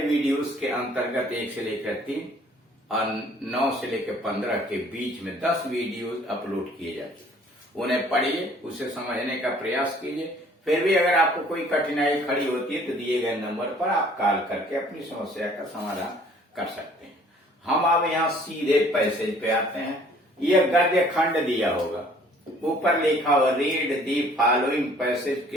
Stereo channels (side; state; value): both; normal; correlation 0.56